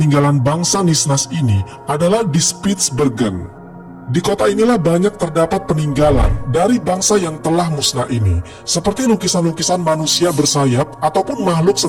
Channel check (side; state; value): both; identical; correlation 1.00